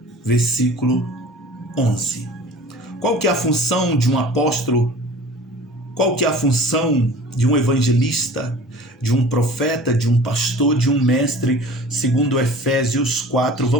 versículo 11. Qual que é a função de um apóstolo? Qual que é a função de um evangelista, de um profeta, de um pastor, de um mestre, segundo Efésios 4,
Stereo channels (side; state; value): both; normal; correlation 0.43